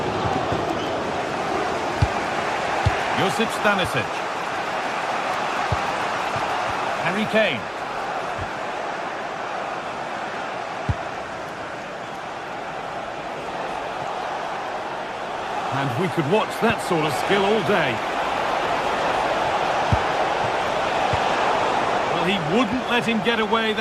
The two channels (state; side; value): identical; both; correlation 1.00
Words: Josip Stanisic. Harry Kane. And we could watch that sort of skill all day. Well, he wouldn't let him get away